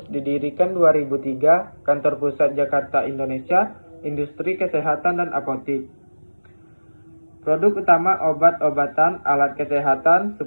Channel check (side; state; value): both; inverted; correlation -1.00